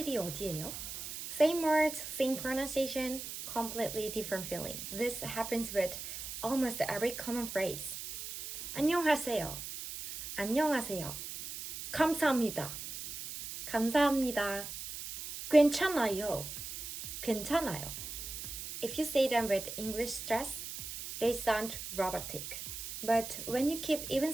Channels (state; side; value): noise; right; hiss, 8 dB below the sound